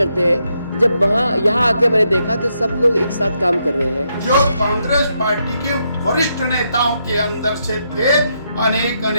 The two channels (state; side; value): inverted; both; correlation -0.79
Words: हैं। जब यहाँ आके मैंने देखा तो सब लोग एक साथ काम कर रहे हैं। जो कांग्रेस पार्टी के वरिष्ठ नेताओं के अंदर से थे,